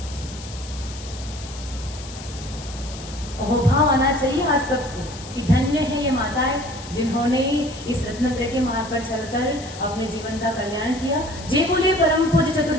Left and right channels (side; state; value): left; noise; hiss, 15 dB below the sound